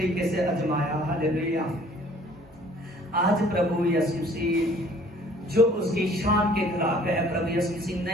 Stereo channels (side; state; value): both; normal; correlation 0.55